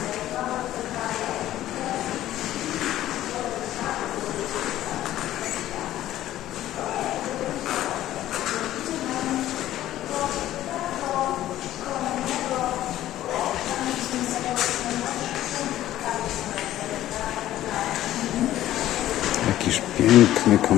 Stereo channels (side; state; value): right; quieter; 13.6 dB